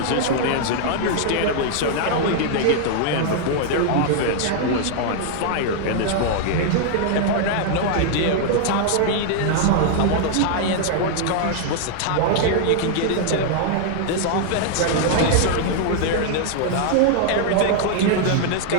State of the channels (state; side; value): different; both; correlation 0.00